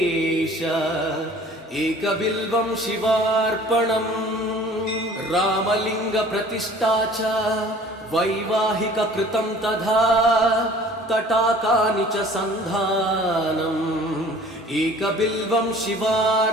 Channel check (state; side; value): normal; both; correlation 0.49